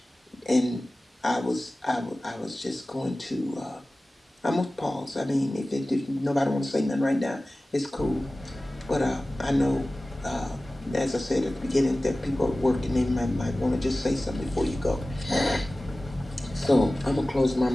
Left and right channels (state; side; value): normal; both; correlation 0.97